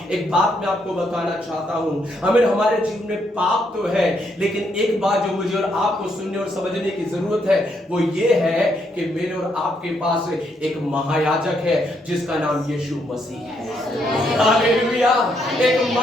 एक बात मैं आपको बताना चाहता हूं। हमें हमारे जीवन में पाप तो है, लेकिन एक बात जो मुझे और आपको सुनने और समझने की जरूरत है, वो ये है कि मेरे और आपके पास एक महायाजक है जिसका नाम यीशु मसीह है। हालेलुया। एक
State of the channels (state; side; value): normal; both; correlation 0.75